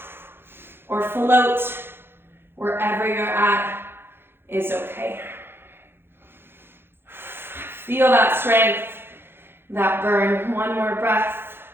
or float. Wherever you're at is okay. Feel that strength, that burn. One more breath.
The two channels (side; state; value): left; late; 0.11 ms